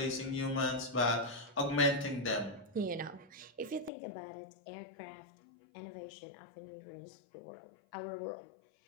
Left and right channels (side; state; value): right; drops out; at 3.9 s